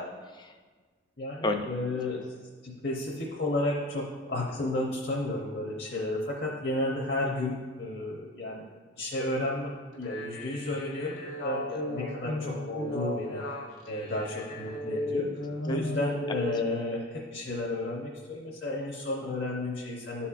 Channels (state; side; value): normal; both; correlation 0.34